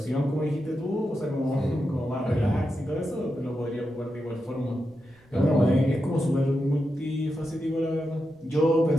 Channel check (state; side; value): noise; right; rumble, 29 dB below the sound